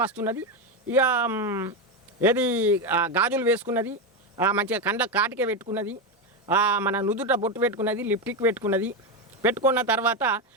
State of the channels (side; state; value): both; normal; correlation 0.11